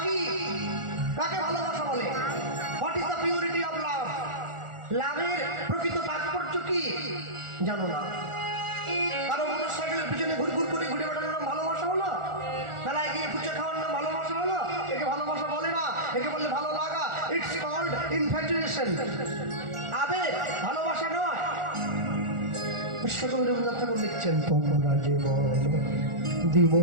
কি? কাকে ভালোবাসা বলে? What is the purity of love? লাভের প্রকৃত তাৎপর্য কি জানো না? কারো মোটরসাইকেলের পিছনে ঘুরঘুর করে ঘুরে বেড়ানোর নাম ভালোবাসা হলো? মেলায় গিয়ে ফুচকা খাওয়ার নাম ভালোবাসা হলো? একে ভালোবাসা বলে না, একে বললে ভালো লাগা। It's called infatuation. আবেগ, ভালোবাসা নয়। বিশ্বকবি রবীন্দ্রনাথ ঠাকুর লিখছেন, তোমরা যে বলো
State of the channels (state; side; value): late; left; 1.4 ms